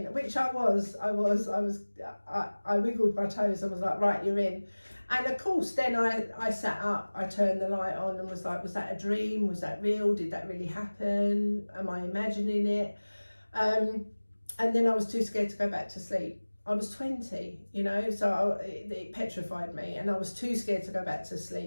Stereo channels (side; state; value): both; inverted; correlation -1.00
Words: which I was. I wiggled my toes and was like, right, you're in. And of course, then I sat up, I turned the light on and was like, was that a dream? Was that real? Did that really happen? Am I imagining it? And then I was too scared to go back to sleep. I was 20, so it petrified me, and I was too scared to go back to